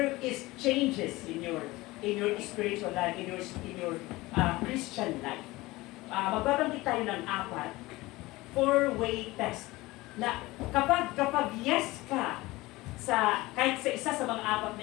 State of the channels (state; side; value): quieter; right; 20.1 dB